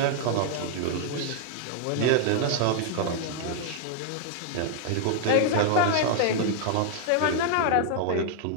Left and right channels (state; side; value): different; both; correlation 0.00